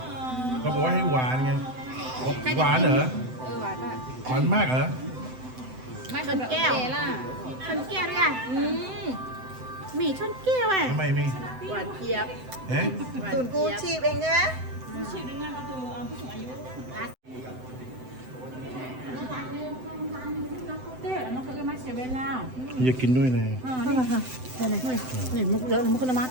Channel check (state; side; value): late; left; 7.8 ms